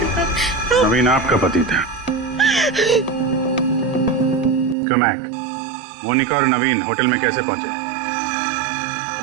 नवीन आपका पति था? क्यों महक, मोनिका और नवीन होटल में कैसे पहुंचे?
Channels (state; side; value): drops out; left; at 4.8 s